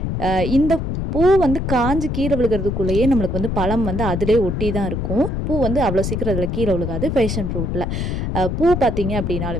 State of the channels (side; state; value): left; noise; rumble, 2 dB below the sound